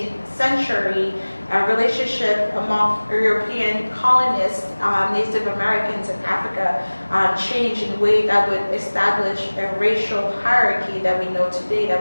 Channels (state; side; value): inverted; both; correlation -1.00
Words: century, a relationship among European colonists, Native Americans in Africa, changed in a way that would establish a racial hierarchy that we know today,